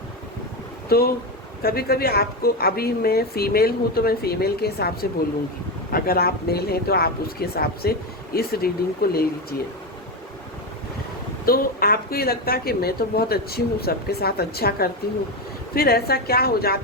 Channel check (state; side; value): normal; both; correlation 0.14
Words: तो कभी कभी आपको, अभी मैं फीमेल हूँ तो मैं फीमेल के हिसाब से बोलूँगी, अगर आप मेल हैं तो आप उसके हिसाब से इस रीडिंग को ले लीजिए। तो आपको ये लगता है कि मैं तो बहुत अच्छी हूँ, सबके साथ अच्छा करती हूँ, फिर ऐसा क्या हो